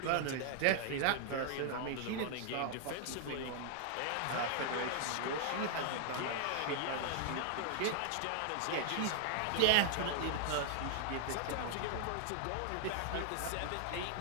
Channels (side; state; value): both; different; correlation -0.01